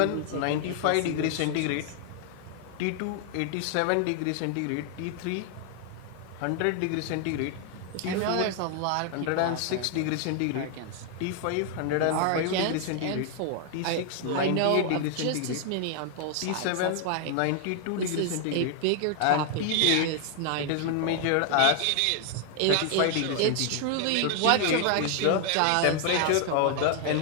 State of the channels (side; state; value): both; different; correlation 0.00